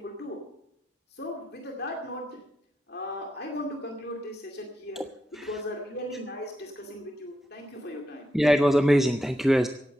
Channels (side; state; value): both; normal; correlation 0.85